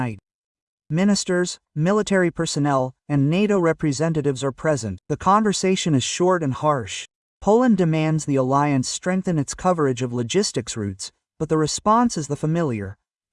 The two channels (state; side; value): identical; both; correlation 1.00